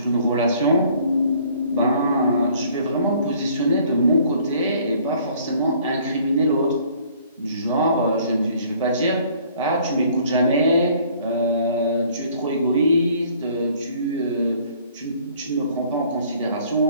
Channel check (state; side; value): inverted; both; correlation -0.58